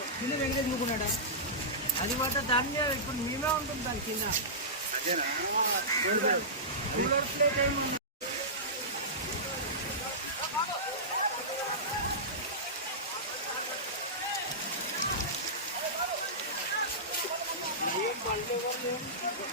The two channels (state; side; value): normal; both; correlation -0.17